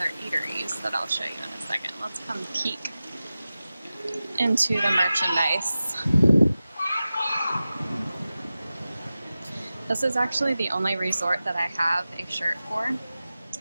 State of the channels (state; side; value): inverted; both; correlation -0.95